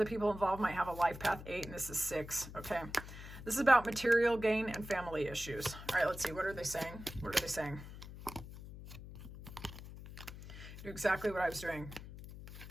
people involved might have a life path 8, and this is 6, okay? This is about material gain and family issues. All right, let's see. What are they saying? What are they saying? Do exactly what I was doing.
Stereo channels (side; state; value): left; noise; hum, 13 dB below the sound